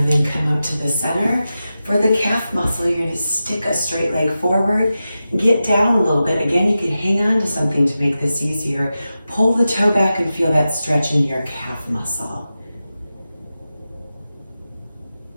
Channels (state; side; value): inverted; both; correlation -0.92